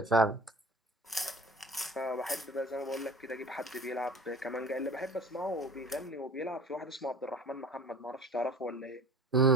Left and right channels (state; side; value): normal; both; correlation 0.42